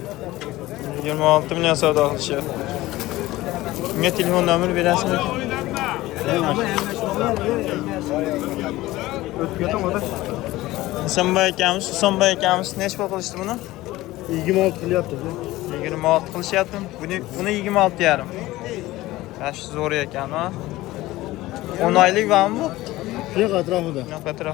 26 million savdo qilishyapti. Unga telefon nomeri berasizmi? Husanboy akamiz nech pul qilishdi buni? 26 qilyapti. 26 qilishyapti. Buni 26,5. Yash zo'r ekan, ha. 10 oylik bormi bu? Yo'q, atrofida. Yo'q,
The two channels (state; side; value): quieter; right; 17.7 dB